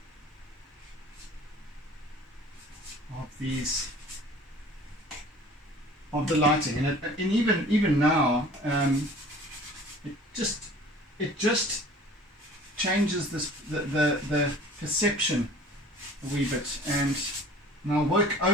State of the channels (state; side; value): normal; both; correlation 0.47